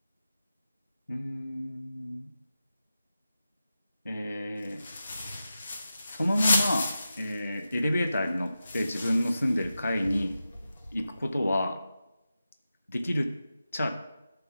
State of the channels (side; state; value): both; inverted; correlation -0.92